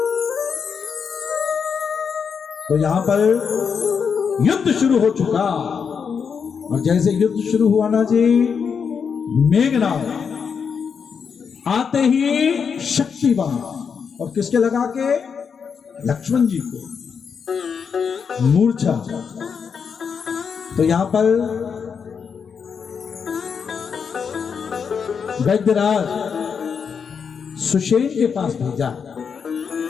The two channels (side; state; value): right; quieter; 6.4 dB